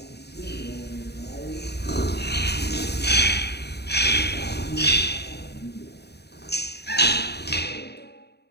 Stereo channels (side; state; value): right; late; 0.48 ms